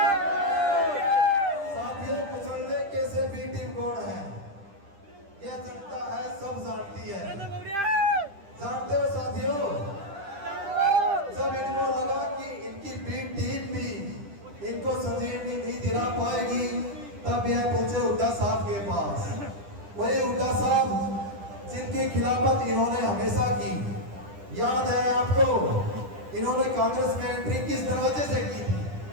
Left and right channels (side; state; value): left; late; 10 ms